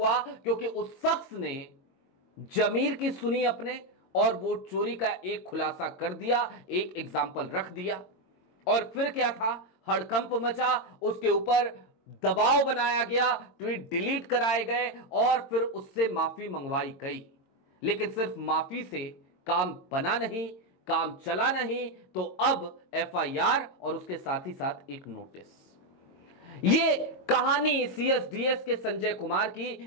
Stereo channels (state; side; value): late; right; 22 ms